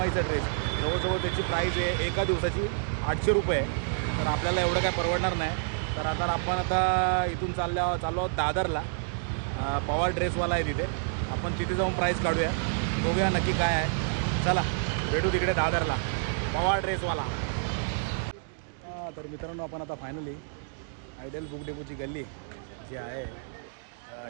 ड्रेस जवळजवळ त्याची प्राईस आहे एका दिवसाची 800 रुपये आहे. तर आपल्याला एवढं काय परवडणार नाही. तर आता इथून चाललो आहोत दादरला. पवार ड्रेसवाला आहे तिथे. आपण तिथे जाऊन प्राईस काढूया, बघूया नक्की काय आहे. चला भेटू तिकडे दादरला, पवार ड्रेसवाला. तर मित्रांनो, आपण आता फायनली आयडियल बुक डेपोची गल्ली जी आहे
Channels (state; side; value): silent; left; digital silence